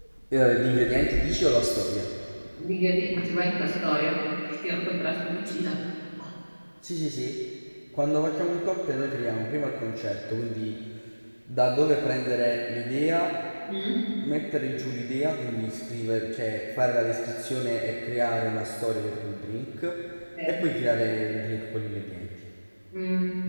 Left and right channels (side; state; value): both; inverted; correlation -1.00